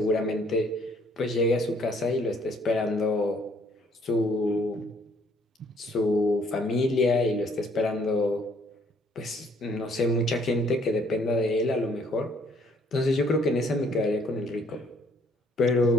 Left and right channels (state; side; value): normal; both; correlation 0.63